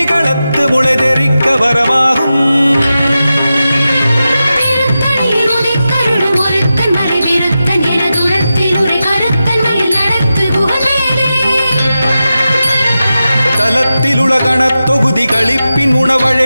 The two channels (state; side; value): inverted; both; correlation -0.92